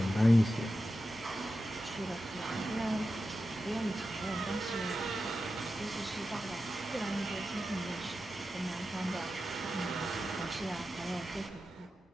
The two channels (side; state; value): both; normal; correlation 0.91